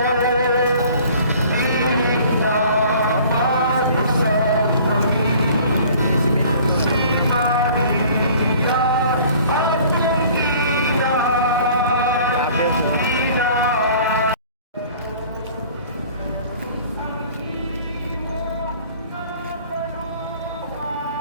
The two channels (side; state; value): both; inverted; correlation -0.50